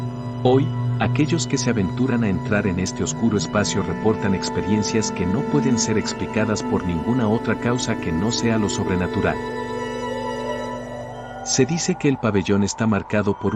Hoy, aquellos que se aventuran a entrar en este oscuro espacio reportan experiencias que no pueden ser explicadas por ninguna otra causa que no sea lo sobrenatural. Se dice que el pabellón está marcado por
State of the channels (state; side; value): identical; both; correlation 1.00